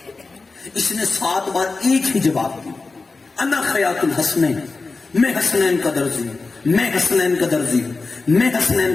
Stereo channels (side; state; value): right; quieter; 3.9 dB